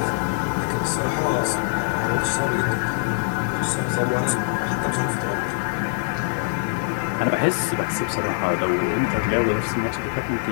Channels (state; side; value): silent; right; digital silence